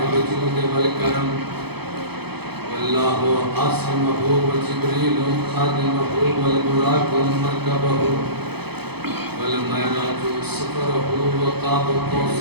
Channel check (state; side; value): late; left; 0.98 ms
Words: الجود والكرم والله عاصمه وجبريل خادمه والبراق مركبه والمعراج سفره وقاب